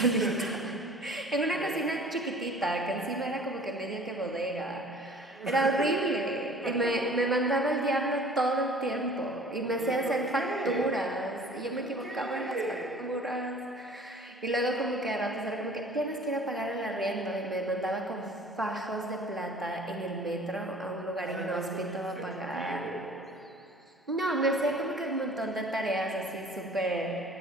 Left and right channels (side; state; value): both; normal; correlation 0.48